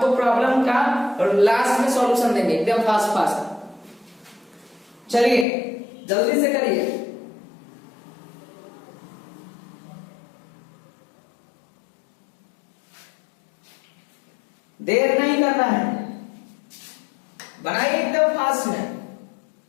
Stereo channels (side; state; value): right; drops out; at 5.5 s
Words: प्रॉब्लम का लास्ट में सॉल्यूशन देंगे एकदम फास्ट फास्ट। चलिए जल्दी से करिए। देर नहीं करना है, बनाइए एकदम फास्ट में।